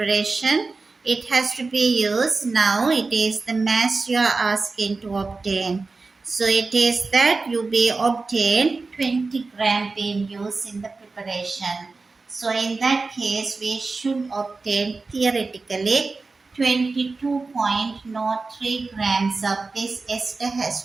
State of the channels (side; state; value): left; quieter; 3.9 dB